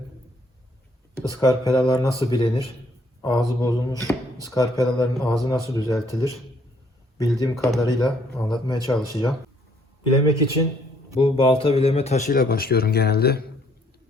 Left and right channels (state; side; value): normal; both; correlation 0.66